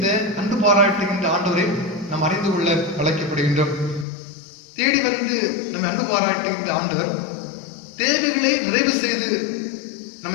அன்பு பாராட்டுகின்ற ஆண்டவரை நாம் அறிந்து கொள்ள அழைக்கப்படுகின்றோம். தேடி வந்து நம்மை அன்பு பாராட்டுகின்ற ஆண்டவர் தேவைகளை நிறைவு செய்து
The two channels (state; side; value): drops out; right; at 4.0 s